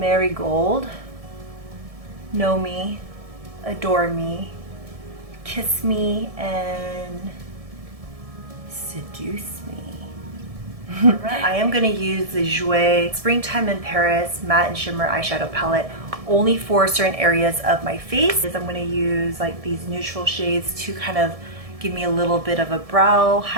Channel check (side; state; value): left; late; 1.7 ms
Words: Know Me, Adore Me, Kiss Me, and Seduce Me. I am going to use the Jouer Springtime in Paris Matte and Shimmer Eyeshadow Palette only for certain areas of my face. I'm going to use like these neutral shades to kind of give me a little bit of a brow